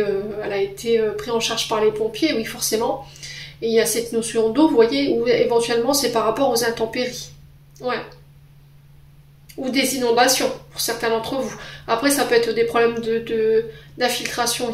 a été prise en charge par les pompiers, oui forcément. Et il y a cette notion d'eau, vous voyez, où éventuellement c'est par rapport aux intempéries. Ouais. Ou des inondations, pour certains d'entre vous. Après, ça peut être des problèmes d'infiltration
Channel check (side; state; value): both; identical; correlation 1.00